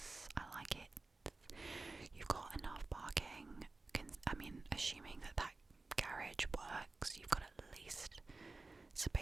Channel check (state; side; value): quieter; left; 3.4 dB